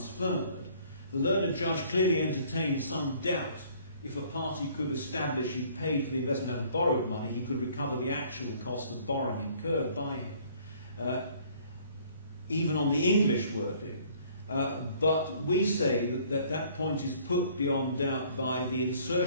The learned judge clearly entertained some doubt if a party could establish he paid for the investment out of borrowed money, he could recover the actual cost of borrowing incurred by him, even on the English wording. But we say that point is put beyond doubt by the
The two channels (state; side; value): inverted; both; correlation -0.57